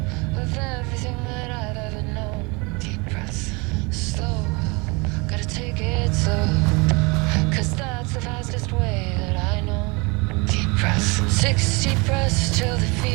of everything that I've ever known. Deep breaths, slow, gotta take it slow, 'cause that's the fastest way that I know. Deep breaths, 6 deep breaths till the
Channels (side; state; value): left; quieter; 28.0 dB